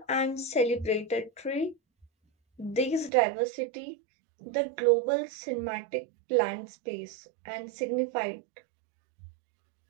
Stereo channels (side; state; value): left; drops out; at 3.1 s